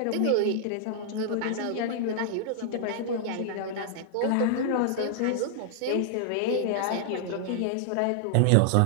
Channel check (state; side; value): different; both; correlation -0.01